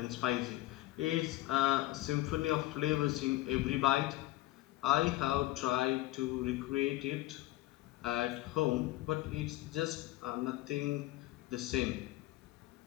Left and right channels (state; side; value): quieter; right; 17.3 dB